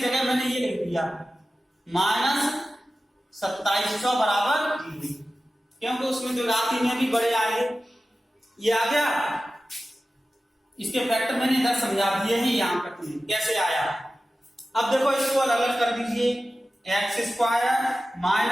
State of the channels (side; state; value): both; normal; correlation 0.94